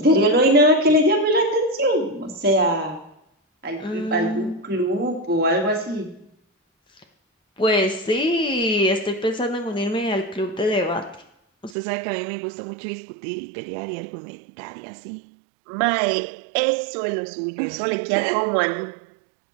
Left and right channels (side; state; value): left; drops out; at 11.8 s